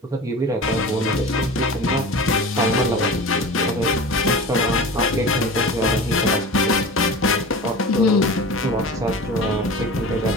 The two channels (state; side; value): normal; both; correlation 0.35